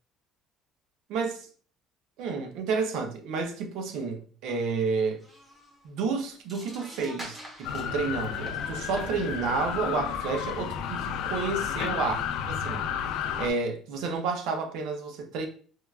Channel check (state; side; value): normal; both; correlation 0.38